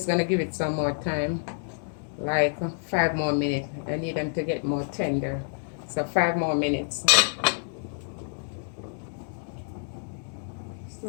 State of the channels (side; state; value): right; silent; digital silence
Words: gonna give it some more time, like 5 more minutes. I need them to get more tender, so 5 more minutes.